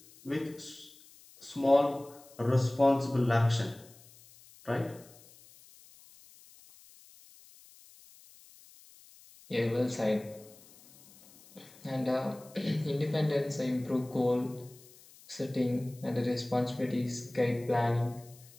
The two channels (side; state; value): left; noise; hiss, 24 dB below the sound